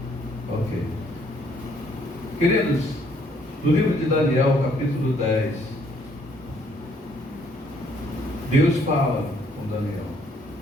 Ok. Queridos, no livro de Daniel, capítulo 10, Deus fala com Daniel.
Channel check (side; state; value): both; normal; correlation 0.66